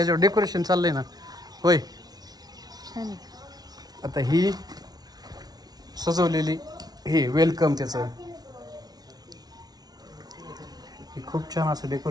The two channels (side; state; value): left; late; 0.19 ms